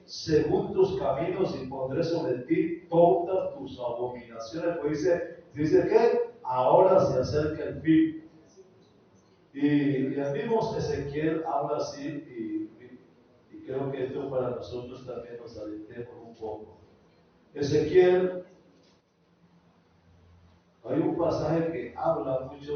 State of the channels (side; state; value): both; identical; correlation 1.00